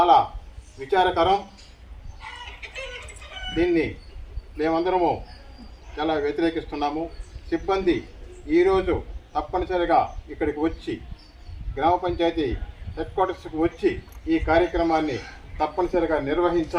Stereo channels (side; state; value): both; identical; correlation 1.00